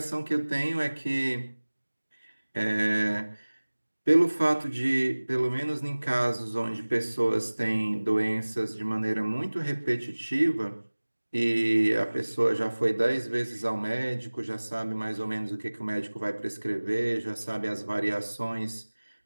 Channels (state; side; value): inverted; both; correlation -1.00